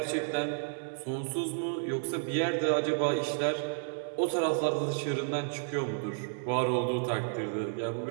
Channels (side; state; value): left; silent; digital silence